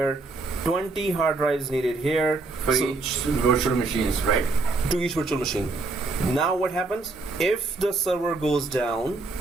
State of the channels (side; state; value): left; quieter; 3.4 dB